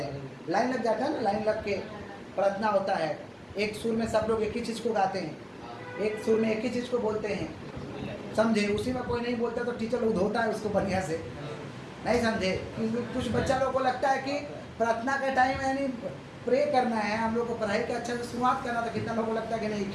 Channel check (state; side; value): identical; both; correlation 1.00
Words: हैं? लाइन लग जाता है ना, लाइन लग के प्रार्थना होता है। एक सुर में सब लोग एक ही चीज़ को गाते हैं, एक सुर में एक ही चीज़ को बोलते हैं, समझे? उसी में कोई नहीं बोलता तो टीचर लोग धोता है उसको बढ़िया से, नहीं समझे? कुछ बच्चा लोग को लगता है कि प्रार्थना का टाइम यानी प्रे करना है, हम लोग को पढ़ाई का अच्छा से शुरुआत करना था, कितना लोगों को लगता है कि नहीं